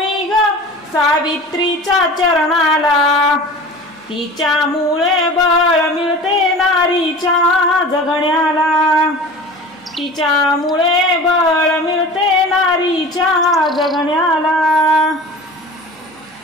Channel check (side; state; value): both; normal; correlation 0.38